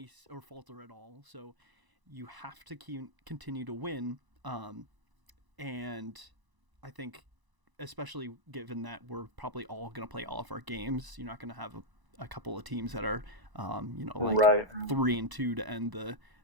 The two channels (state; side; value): late; left; 1.0 ms